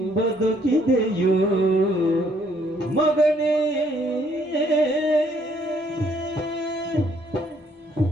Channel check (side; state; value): both; normal; correlation 0.66